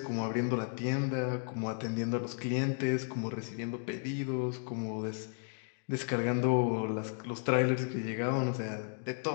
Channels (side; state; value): right; silent; 55 dB below the other